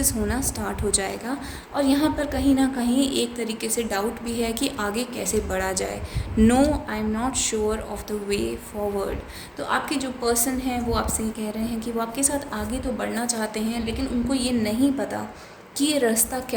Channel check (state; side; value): identical; both; correlation 1.00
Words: होना स्टार्ट हो जाएगा। और यहाँ पर कहीं ना कहीं एक तरीके से डाउट भी है कि आगे कैसे बढ़ा जाए। No, I am not sure of the way forward. तो आपके जो पर्सन हैं वो आपसे ये कह रहे हैं कि वो आपके साथ आगे तो बढ़ना चाहते हैं, लेकिन उनको ये नहीं पता कि ये रास्ता